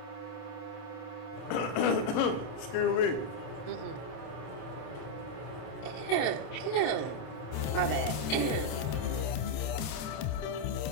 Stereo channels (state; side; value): late; right; 27 ms